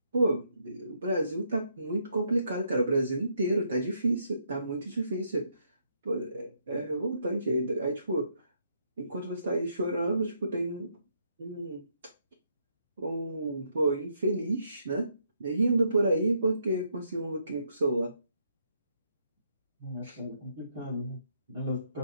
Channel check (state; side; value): inverted; both; correlation -0.75